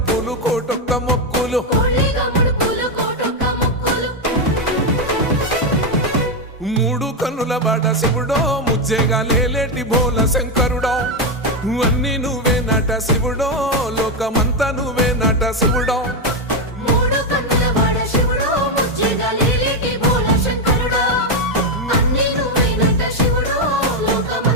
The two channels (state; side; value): normal; both; correlation 0.07